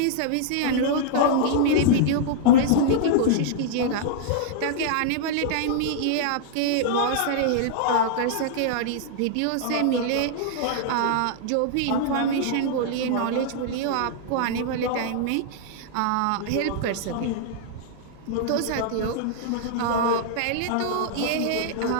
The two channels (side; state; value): both; different; correlation -0.01